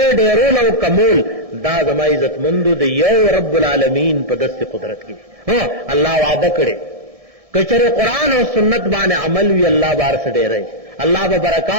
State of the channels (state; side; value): late; left; 1.6 ms